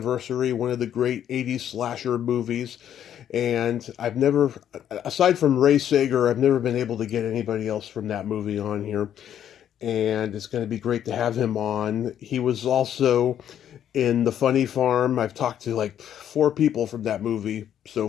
one of the great 80s slasher movies. And I've never, aside from Ray Sager, I've never been able to get anybody else from that movie on here. And it's going to be great to have him on. He was also in The Funny Farm. I've talked to like 4 people from that movie so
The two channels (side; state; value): right; quieter; 10.0 dB